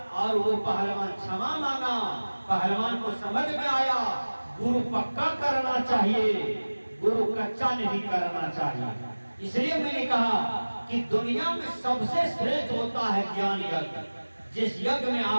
और वो पहलवान क्षमा मांगा। पहलवान को समझ में आया गुरु पक्का करना चाहिए, गुरु कच्चा नहीं करना चाहिए। इसलिए मैंने कहा कि दुनिया में सबसे श्रेष्ठ होता है ज्ञान यज्ञ। जिस यज्ञ में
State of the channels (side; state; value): both; inverted; correlation -1.00